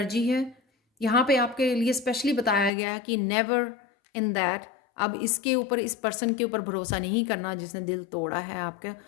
है यहाँ पे आपके लिए, स्पेशली बताया गया कि नेवर इन दैट, अब इसके ऊपर, इस पर्सन के ऊपर भरोसा नहीं करना जिसने दिल तोड़ा है आपके,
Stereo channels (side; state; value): right; drops out; at 2.7 s